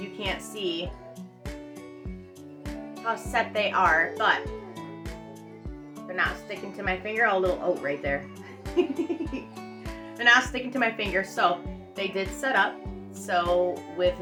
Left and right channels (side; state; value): both; identical; correlation 1.00